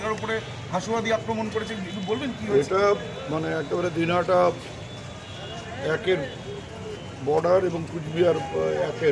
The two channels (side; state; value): both; identical; correlation 1.00